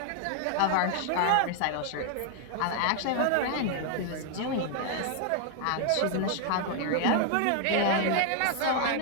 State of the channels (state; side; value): different; both; correlation 0.00